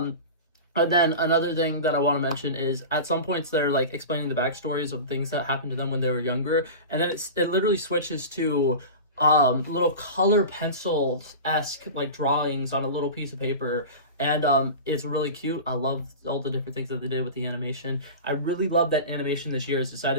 then another thing that I want to mention is at some points they're like explaining the backstories of things that happened to them when they were younger. And then it literally switches to little color pencil-esque like drawings on a little piece of paper, and it's really cute. I love all the different things that they did with the animation. I really love that animation this year has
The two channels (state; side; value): inverted; both; correlation -0.30